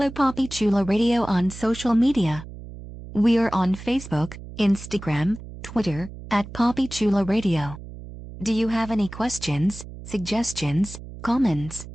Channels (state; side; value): noise; right; hum, 14 dB below the sound